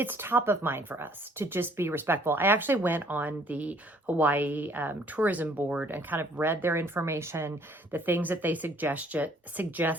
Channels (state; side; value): normal; both; correlation 0.60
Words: top of mind for us to just be respectful. I actually went on the Hawaii tourism board and kind of read their information, the things that they